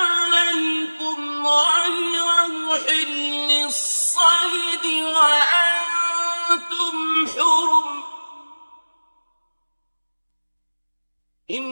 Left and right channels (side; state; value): both; inverted; correlation -1.00